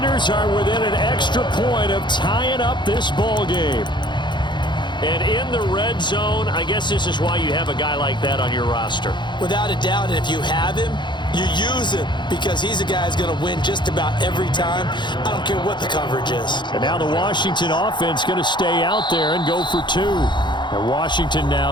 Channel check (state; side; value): late; right; 0.22 ms